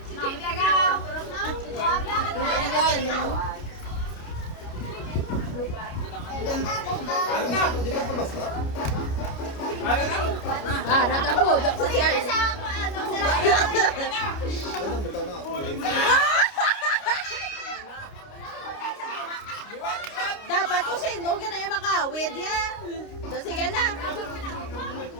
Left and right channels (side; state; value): right; late; 29 ms